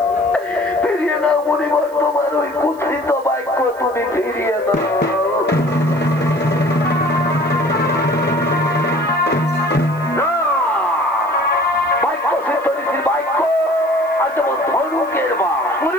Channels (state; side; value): noise; right; hiss, 26 dB below the sound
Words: মুনিবর, তোমার ওই কুৎসিত বাক্য তুমি ফিরিয়ে দাও। বাক্য সিদ্ধরিসির বাক্য আর যেমন ধনুকের বা